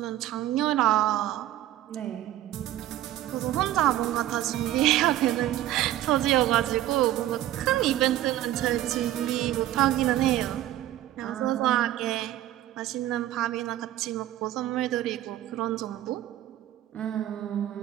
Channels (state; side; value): quieter; left; 13.6 dB